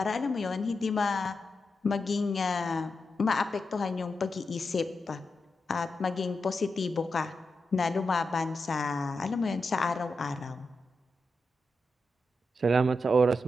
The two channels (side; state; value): both; normal; correlation 0.88